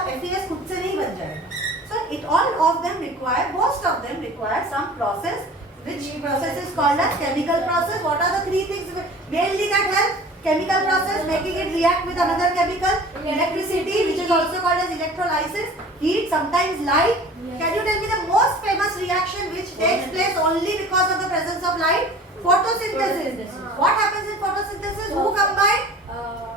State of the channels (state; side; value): normal; both; correlation 0.43